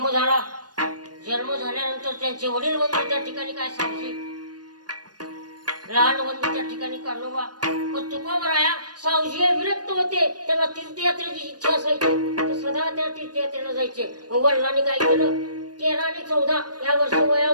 झाला. जन्म झाल्यानंतर त्यांचे वडील बंधू त्या ठिकाणी काय सांगते. लहान बंधू त्या ठिकाणी काढोबा. पण तुकोबराया सावजी विरक्त होते. त्यांना तीर्थयात्रेची इच्छा असायची. तर सदा त्या तीर्थयात्रेला जायचे. वडिलांनी काय केलं 13 आणि 14 या वर्ष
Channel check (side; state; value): left; late; 0.69 ms